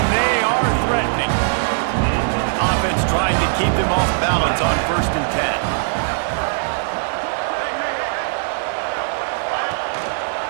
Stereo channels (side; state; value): left; silent; digital silence